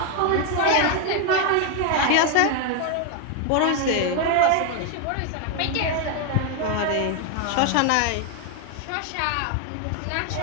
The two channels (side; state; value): both; different; correlation 0.01